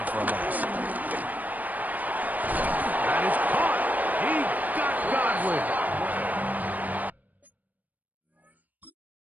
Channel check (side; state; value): left; late; 0.080 ms